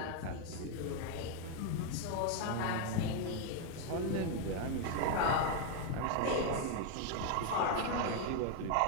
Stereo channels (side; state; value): both; different; correlation 0.01